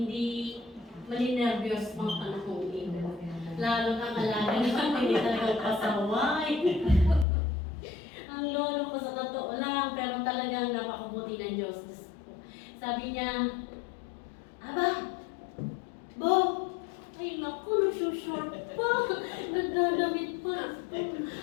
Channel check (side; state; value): right; drops out; at 7.2 s